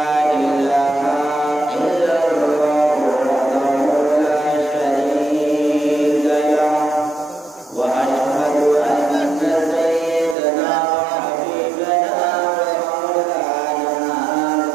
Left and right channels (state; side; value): drops out; left; at 10.4 s